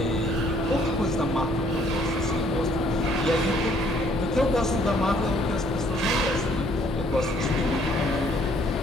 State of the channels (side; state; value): both; normal; correlation 0.63